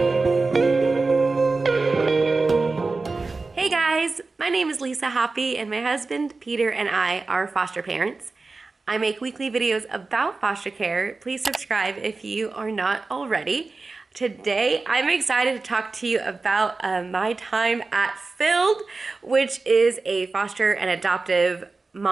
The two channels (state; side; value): quieter; left; 3.8 dB